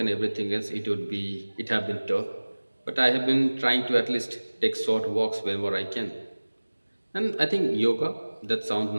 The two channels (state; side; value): inverted; both; correlation -1.00